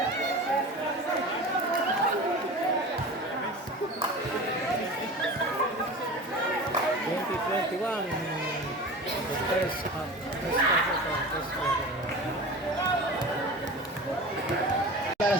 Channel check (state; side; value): normal; both; correlation 0.34